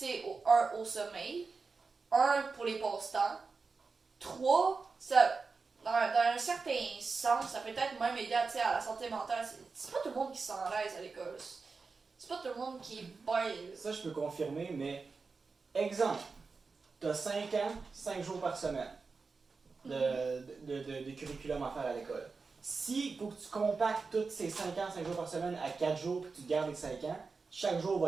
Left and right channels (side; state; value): left; quieter; 4.5 dB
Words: sais, au sommeil, 1 pour les passe-temps, 3, ça, dans un certain sens, ça peut être même aider à la santé mentale. C'est pas tout le monde qui se sent à l'aise à l'école. C'est pas tout le monde qui est bien. Ça, je peux confirmer, mais exemple, t'as 5 ans, 5 jours par semaine de curriculum à faire à l'école. Si faut que tu compactes tous ces 5 ans, 5 jours par semaine à 4 jours, puis tu gardes les 5 ans, chaque jour va